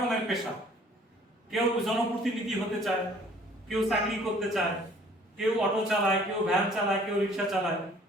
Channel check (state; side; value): normal; both; correlation 0.55